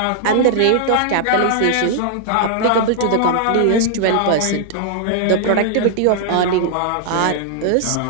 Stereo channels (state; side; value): different; both; correlation -0.01